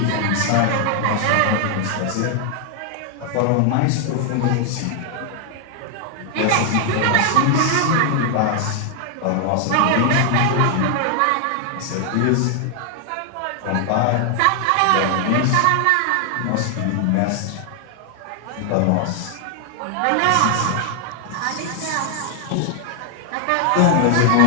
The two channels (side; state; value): both; different; correlation 0.00